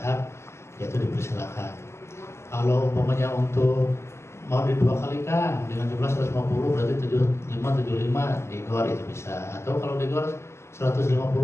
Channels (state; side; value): late; right; 0.13 ms